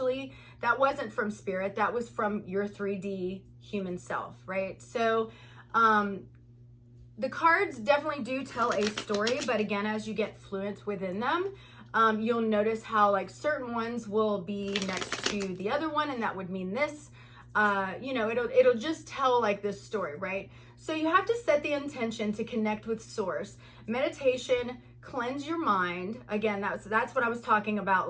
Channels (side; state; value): both; identical; correlation 1.00